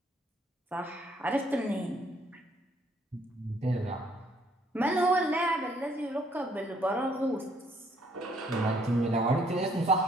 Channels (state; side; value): normal; both; correlation 0.65